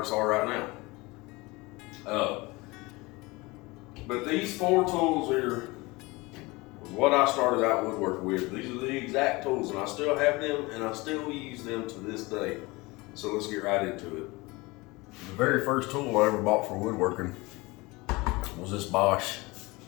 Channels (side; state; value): right; quieter; 23.3 dB